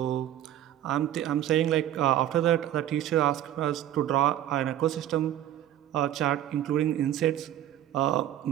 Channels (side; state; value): left; quieter; 12.1 dB